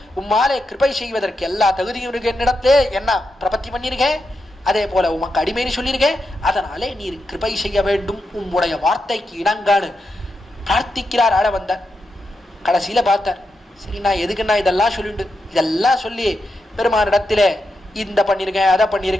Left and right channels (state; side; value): normal; both; correlation 0.86